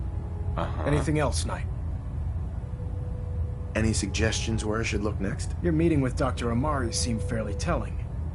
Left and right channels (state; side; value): identical; both; correlation 1.00